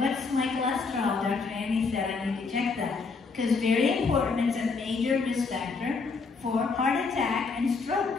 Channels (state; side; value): quieter; right; 4.5 dB